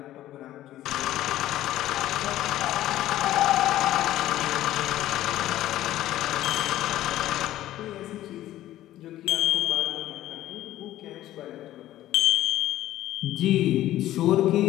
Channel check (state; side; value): quieter; right; 14.0 dB